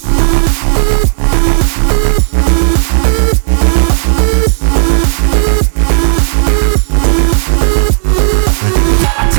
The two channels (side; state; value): left; silent; digital silence